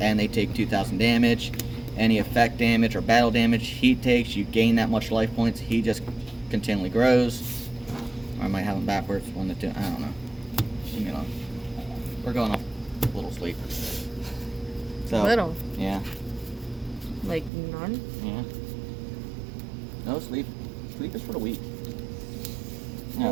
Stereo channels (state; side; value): drops out; left; at 17.5 s